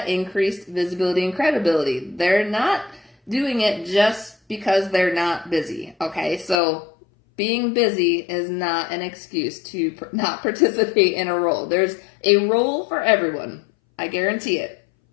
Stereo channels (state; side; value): drops out; right; at 6.6 s